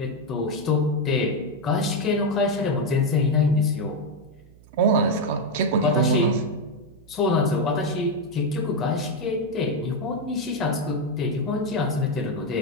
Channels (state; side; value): noise; right; hum, 24 dB below the sound